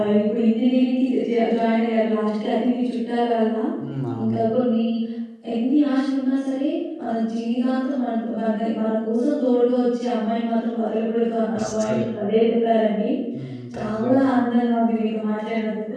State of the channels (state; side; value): identical; both; correlation 1.00